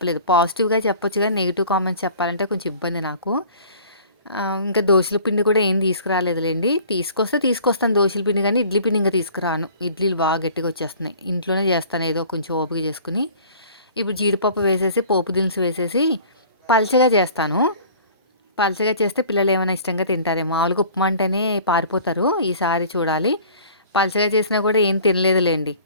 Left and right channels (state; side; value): inverted; both; correlation -0.47